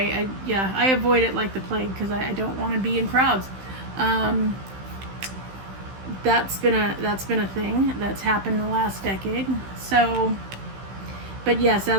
avoid it like the plague because I don't want to be in crowds. That's been a thing that's happened in the last decade. So, but yes,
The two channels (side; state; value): left; late; 15 ms